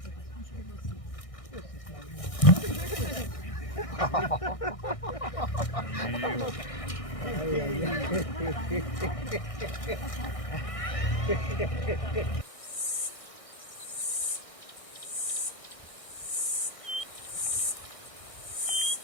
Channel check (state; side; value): late; right; 1.6 ms